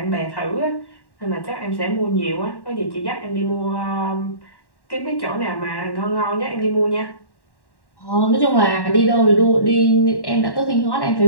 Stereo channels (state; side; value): late; right; 1.1 ms